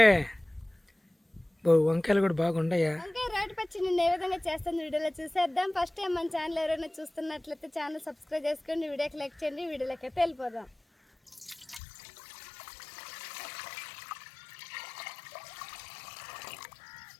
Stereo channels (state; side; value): drops out; right; at 11.8 s